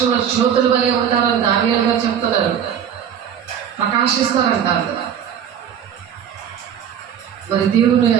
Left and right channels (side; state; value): left; quieter; 8.8 dB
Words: జ్యోతుల వలె ఉంటారని దానియేలు గారు చెప్తున్నారు. ప్రకాశిస్తారంటారు. మరి దేవుని